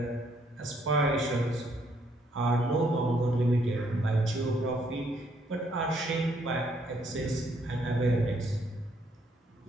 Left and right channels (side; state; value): both; normal; correlation 0.69